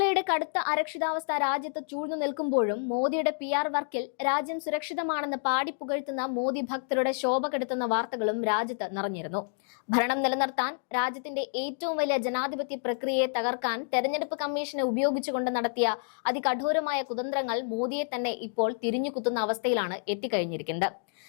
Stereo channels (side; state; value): right; silent; digital silence